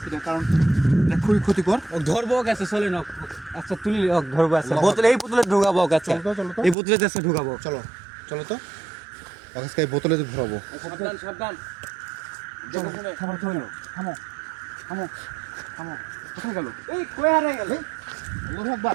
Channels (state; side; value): drops out; left; at 6.8 s